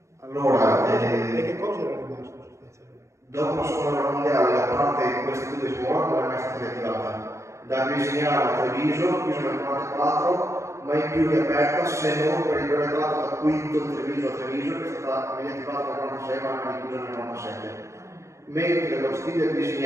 Allora, e che cosa era rimasto sostanzialmente? Dopo la seconda guerra mondiale la parte di queste due scuole non è mai stata riattivata. Da Visignano a Treviso, chiuso nel 1944, mai più riaperta se non per il breve tratto da Quinto Treviso a Treviso, che è stata riattivata nel 1946 ma anche chiusa nel 1997. Mentre lo stile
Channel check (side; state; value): left; late; 0.14 ms